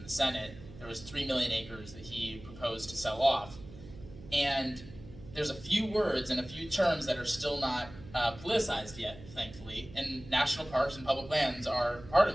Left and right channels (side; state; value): right; noise; hum, 17 dB below the sound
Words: the Senate. There was 3 million acres that he proposed to sell off. And there's a few words and a few terms that are still not politicized yet, thankfully. And national parks and public lands are part of